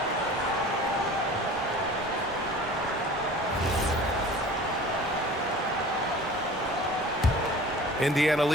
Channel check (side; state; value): both; normal; correlation 0.42